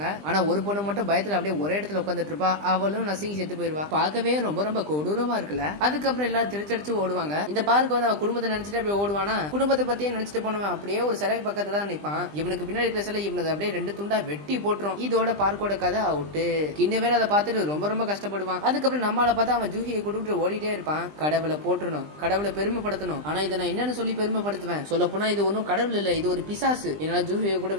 ஆனா ஒரு பொண்ணு மட்டும் பயத்துல அப்படியே ஒரே இடத்துல உட்காந்துட்டு இருப்பா. அவளும் நசுங்கி செத்து போயிருவா. பார்க்கவே ரொம்ப கொடூரமா இருக்குல்ல. அதுக்கப்புறம் எல்லாரும் திருச்சடிச்சு ஓடுவாங்க. இந்த பார்க்க வந்து அவன் குடும்பத்தை நினைச்சிட்டு அப்படியே ஓடுவானா. குடும்பத்தை பத்தியே நினைச்சிட்டு போனவன் அப்படியே ஒரு சிலை பக்கத்துல தான் நிப்பான். இவனுக்கு பின்னாடி இருக்கிற சிலை இவனுக்கு அப்படியே 2 துண்டா வெட்டி போட்டுரும். இதோட பார்க்கோட கதை அவுட்டு. கிண்ண வேற அதை பார்த்துட்டு ரொம்ப கஷ்டப்படுவான். அதுக்கப்புறம் நம்மளால பார்த்தா அவன் ஜூஹியை ஜூஹியை கூட்டிட்டு ஓடிட்டே இருப்பான். கடவுளை போட்டுறணும், கடவுளை பெருமைப்படுத்தணும். ஆனா இதை நான் என்னன்னு சொல்லி பெருமைப்படுத்துவேன்? சொல்ல போனா இது ஒன்னும் கடவுள் இல்ல, இது ஒரு பிசாசு. என்னால ஜூஹியை கூட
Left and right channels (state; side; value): late; left; 20 ms